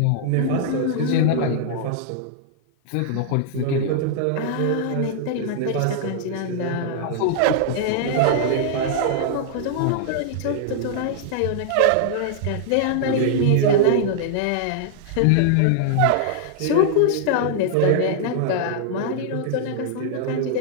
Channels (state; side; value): different; both; correlation -0.01